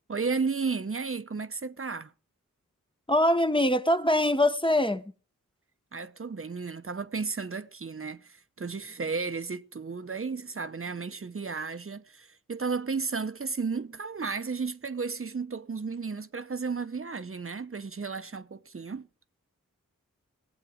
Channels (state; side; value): normal; both; correlation 0.49